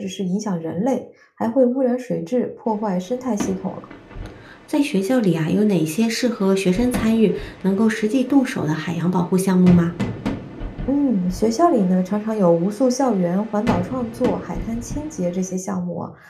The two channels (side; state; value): both; identical; correlation 1.00